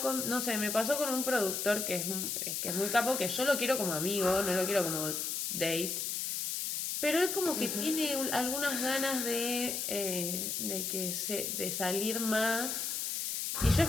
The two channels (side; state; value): left; noise; hiss, 1 dB below the sound